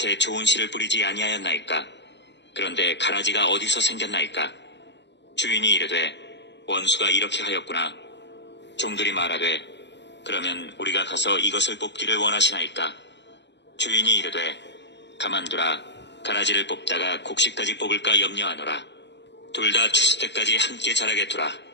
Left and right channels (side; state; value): right; late; 0.51 ms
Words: 좋은 씨를 뿌리지 아니하였나이까? 그런데 가라지가 어디서 생겼나이까? 주인이 이르되, 원수가 이렇게 하였구나. 종들이 말하되, 그러면 우리가 가서 이것을 뽑기를 원하시나이까? 주인이 이르되, 가만두라. 가라지를 뽑다가 곡식까지 뽑을까 염려하노라. 둘 다 추수 때까지 함께 자라게 두라.